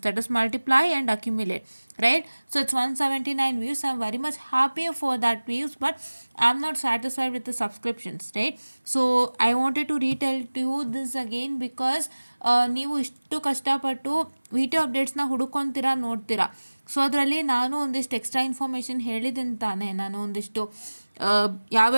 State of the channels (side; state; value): both; inverted; correlation -1.00